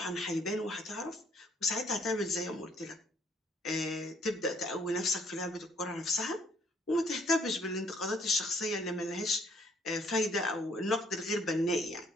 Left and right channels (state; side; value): normal; both; correlation 0.64